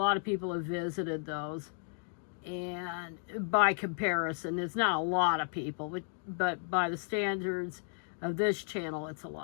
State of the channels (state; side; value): silent; right; digital silence